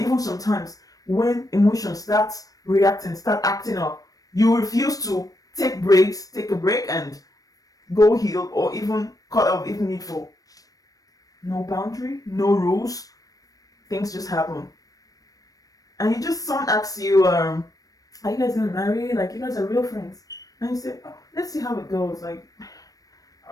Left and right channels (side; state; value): right; late; 0.18 ms